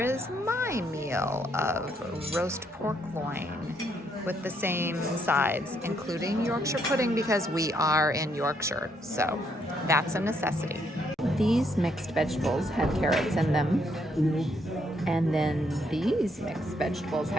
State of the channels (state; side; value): normal; both; correlation 0.73